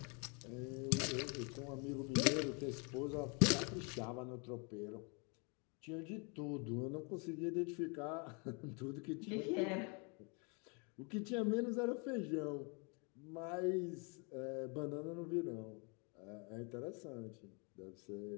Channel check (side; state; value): right; quieter; 34.1 dB